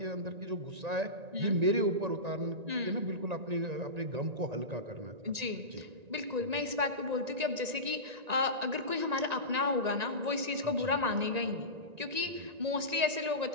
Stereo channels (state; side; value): late; left; 1.9 ms